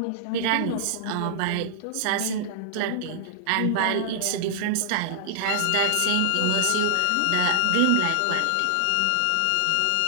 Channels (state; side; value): different; both; correlation -0.01